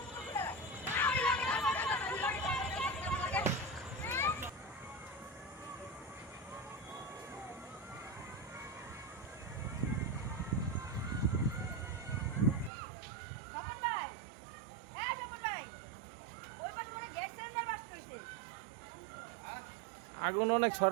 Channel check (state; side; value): drops out; left; at 12.7 s